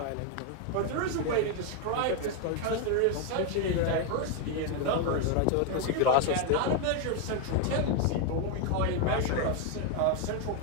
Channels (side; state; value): both; different; correlation 0.01